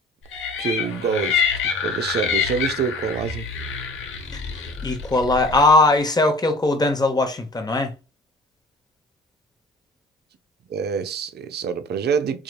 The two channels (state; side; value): normal; both; correlation 0.45